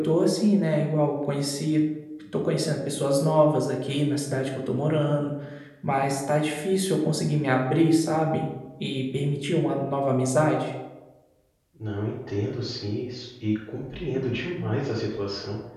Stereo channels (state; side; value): identical; both; correlation 1.00